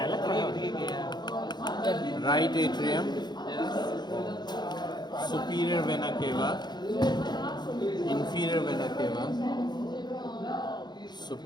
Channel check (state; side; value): late; right; 0.21 ms